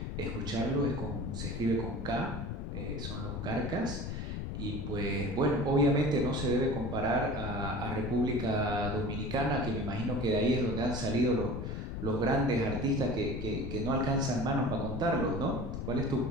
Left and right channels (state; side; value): noise; left; rumble, 5 dB below the sound